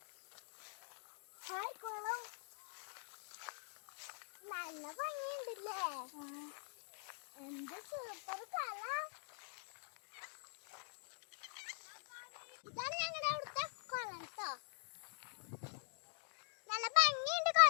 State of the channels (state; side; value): silent; right; digital silence